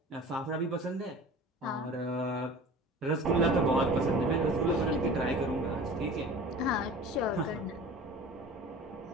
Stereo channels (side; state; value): both; normal; correlation 0.40